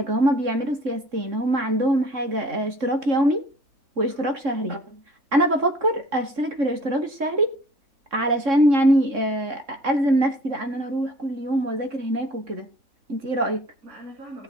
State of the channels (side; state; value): left; late; 3.6 ms